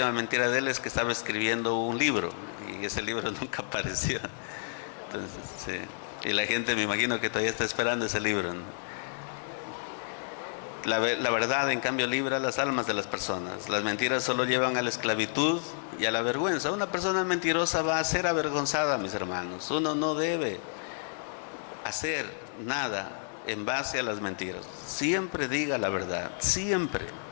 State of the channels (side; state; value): right; silent; 58 dB below the other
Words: mentira de él es que estaba escribiendo un libro y ese libro nunca apareció. Entonces, sí. Y la gente, me imagino que todavía está esperando ese libro, ¿no? La verdad, en cambio, libra las almas de las personas. Las mentiras solo llevan a la esclavitud y a la vergüenza. Una persona mentirosa va a ser avergonzada, mis hermanos. Uno no debe hacer nada en base a las mentiras. Siempre diga la verdad, siempre.